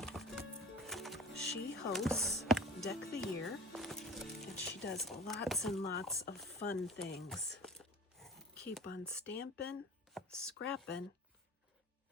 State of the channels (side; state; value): both; normal; correlation 0.39